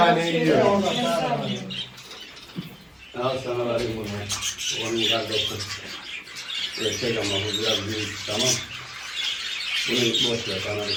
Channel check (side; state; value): both; identical; correlation 1.00